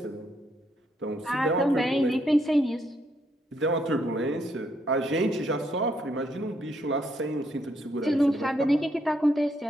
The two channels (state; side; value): normal; both; correlation 0.74